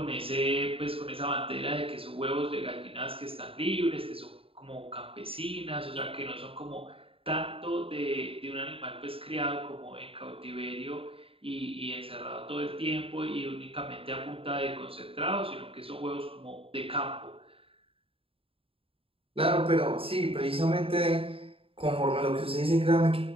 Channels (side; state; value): left; late; 0.27 ms